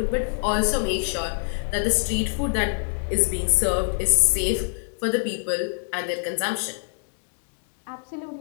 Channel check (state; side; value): silent; right; digital silence